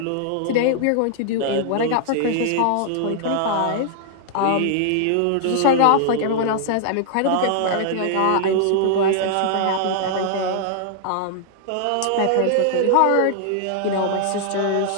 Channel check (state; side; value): different; both; correlation -0.01